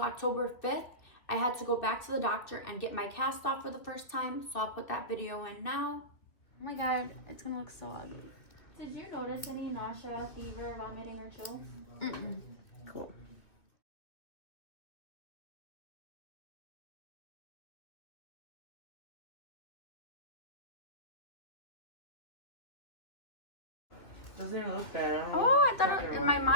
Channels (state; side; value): late; right; 2.8 ms